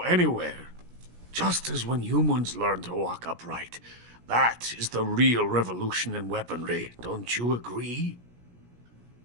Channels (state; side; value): late; left; 17 ms